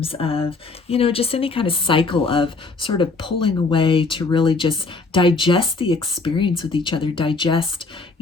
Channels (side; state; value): right; quieter; 3.8 dB